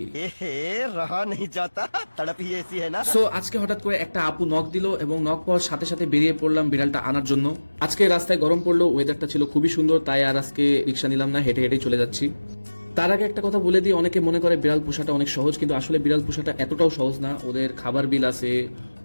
रहा नहीं जाता तड़प ही ऐसी है ना। সো আজকে হঠাৎ করে একটা আপু নক দিল এবং নক পাওয়ার সাথে সাথে বেরিয়ে পড়লাম বিড়ালটা আনার জন্য। আজকে রাস্তায় গরম পড়লো, ওয়েদারটা ছিল খুবই সুন্দর, তাই আর আজকে রিক্সা নিলাম না, হেঁটে হেঁটে চলে যাচ্ছি। তার আগে একটা কথা বলে দিই, অনেকে মনে করে বিড়াল পোষাটা অনেক সহজ, কিন্তু আসলে বিড়াল পোষাটা এতটাও সহজ না। ওদের খাবার বিল আছে,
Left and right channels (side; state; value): both; inverted; correlation -1.00